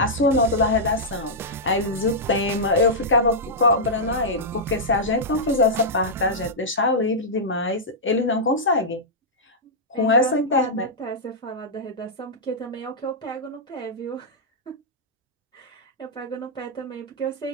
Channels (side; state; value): both; normal; correlation -0.10